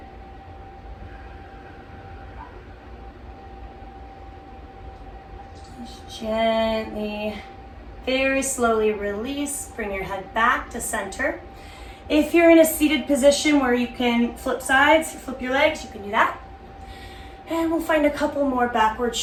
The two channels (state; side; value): identical; both; correlation 1.00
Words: Just gently, very slowly release. Bring your head back to center. If you're in a seated position where you can flip sides, flip your legs, you can do that. And we'll find a couple more backward